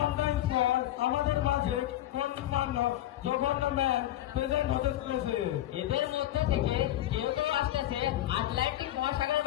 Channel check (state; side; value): quieter; right; 13.7 dB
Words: পর আমাদের মাঝে গণ্যমান্য জঘন্য ম্যান প্রেজেন্ট হতে চলেছে। এদের মধ্যে থেকে কেউ কেউ আসতেছে আটলান্টিক মহাসাগর